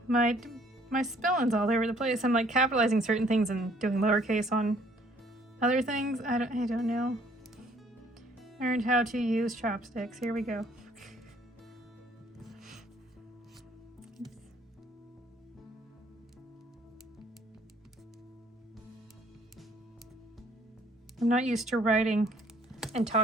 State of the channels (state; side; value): normal; both; correlation 0.61